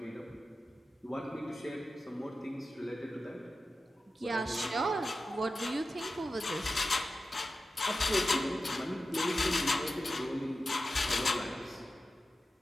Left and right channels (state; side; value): normal; both; correlation 0.93